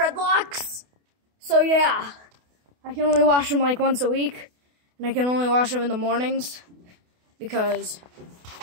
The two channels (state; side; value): late; left; 28 ms